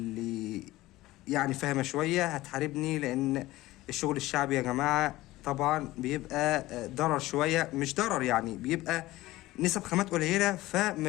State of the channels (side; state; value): right; quieter; 17.6 dB